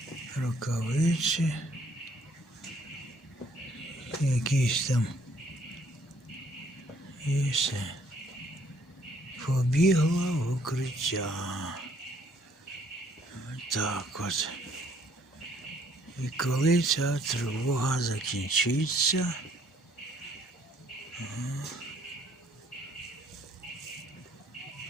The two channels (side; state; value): both; normal; correlation 0.64